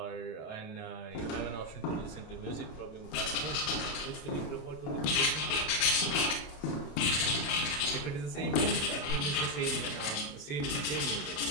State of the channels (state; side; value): late; right; 28 ms